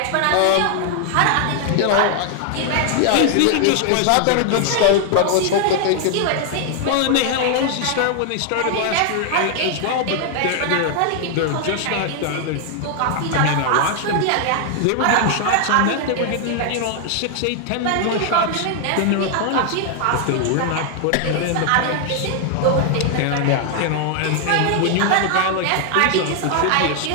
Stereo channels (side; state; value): both; different; correlation 0.00